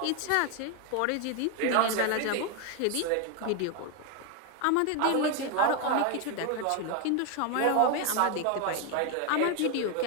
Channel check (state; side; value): different; both; correlation 0.01